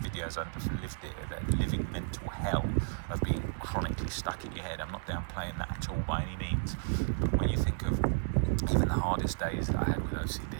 the videos. I've lived it, the living mental hell of being chronically stuck in your head. I'm not downplaying that at all by any means. But when you think of even the hardest days that I had with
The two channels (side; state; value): left; silent; 56 dB below the other